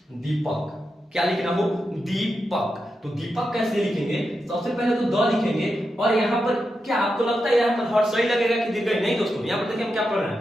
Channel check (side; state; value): both; normal; correlation 0.87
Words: दीपक, क्या लिखना हो, दीपक, तो दीपक कैसे लिखेंगे, सबसे पहले तो द लिखेंगे, और यहाँ पर क्या आपको लगता है यहाँ पर हर सही लगेगा कि दीर्घ, नहीं दोस्तों, यहाँ पर देखिए हम क्या पढ़ रहे